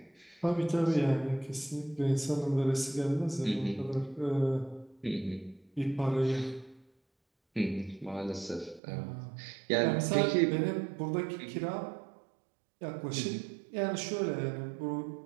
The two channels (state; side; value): drops out; left; at 8.8 s